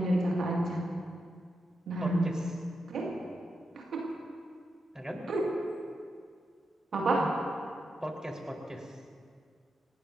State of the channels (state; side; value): normal; both; correlation 0.86